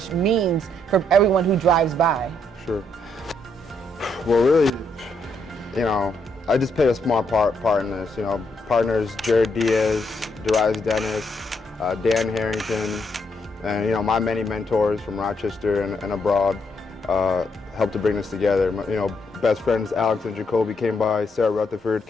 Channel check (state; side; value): normal; both; correlation 0.75